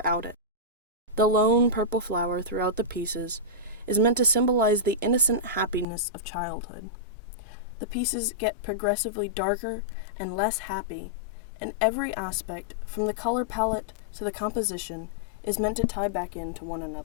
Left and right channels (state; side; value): drops out; right; at 5.9 s